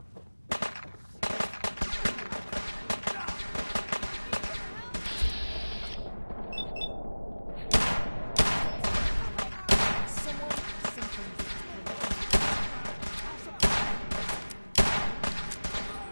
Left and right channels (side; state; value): both; inverted; correlation -1.00